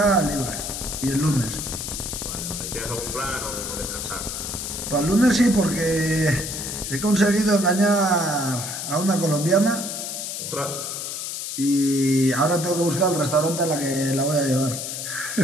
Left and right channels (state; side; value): noise; left; hiss, 5 dB below the sound